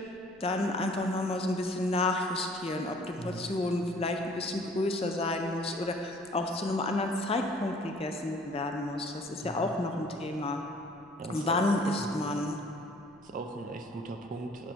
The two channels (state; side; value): noise; left; rumble, 30 dB below the sound